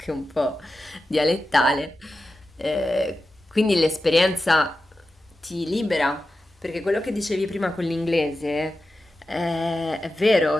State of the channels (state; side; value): normal; both; correlation 0.92